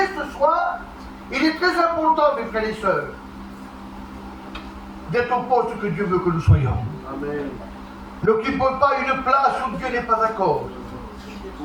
ce soir, il est très important, mes frères et sœurs, d'être au poste que Dieu veut que nous soyons. Amen. N'occupez pas une place où Dieu n'est pas d'accord.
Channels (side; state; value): both; identical; correlation 1.00